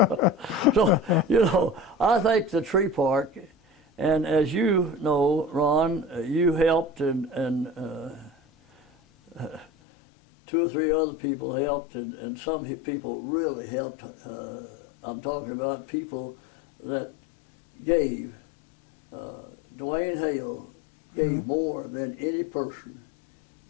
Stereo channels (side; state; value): right; drops out; at 9.7 s